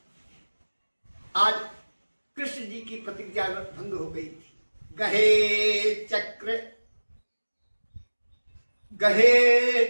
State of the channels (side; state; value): both; inverted; correlation -1.00